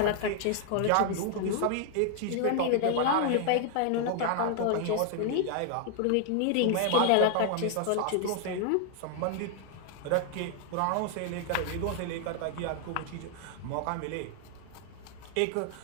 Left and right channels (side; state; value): both; different; correlation 0.00